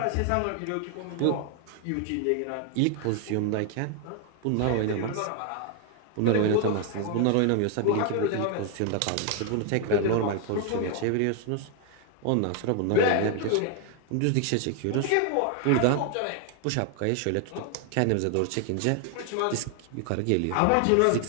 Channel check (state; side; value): different; both; correlation 0.01